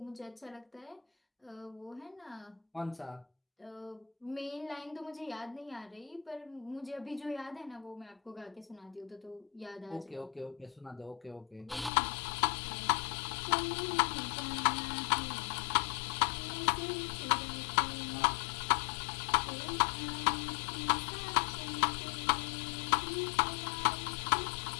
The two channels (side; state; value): right; drops out; at 11.9 s